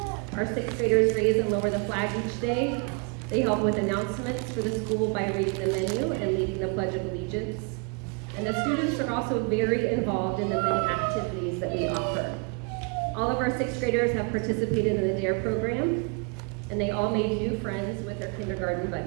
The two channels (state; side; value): quieter; left; 35.3 dB